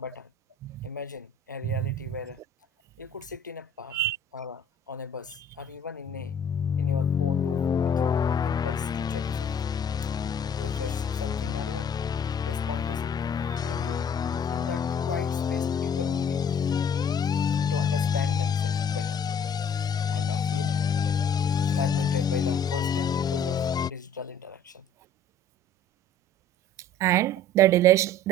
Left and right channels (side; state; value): both; normal; correlation 0.53